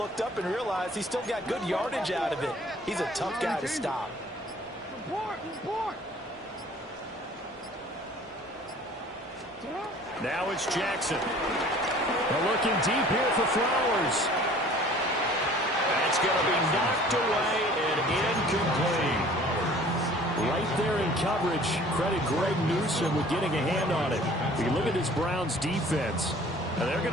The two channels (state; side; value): normal; both; correlation 0.50